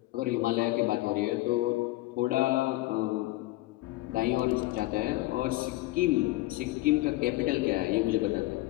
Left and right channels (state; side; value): quieter; right; 18.9 dB